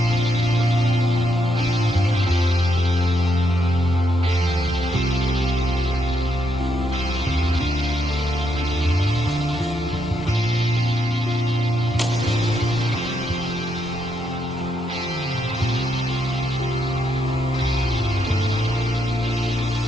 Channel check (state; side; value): normal; both; correlation 0.77